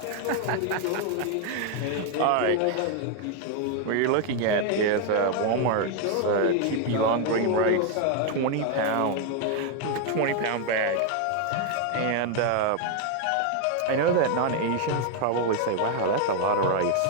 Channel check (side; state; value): both; different; correlation 0.01